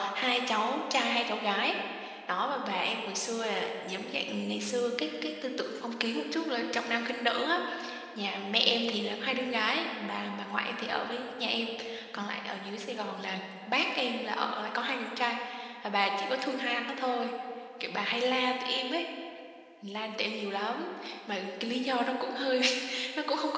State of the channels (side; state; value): both; identical; correlation 1.00